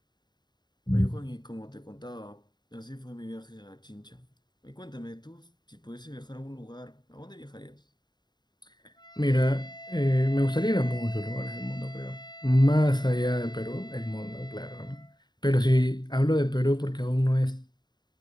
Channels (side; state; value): right; late; 0.21 ms